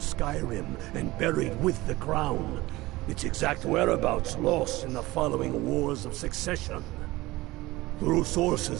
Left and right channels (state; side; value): quieter; left; 19.4 dB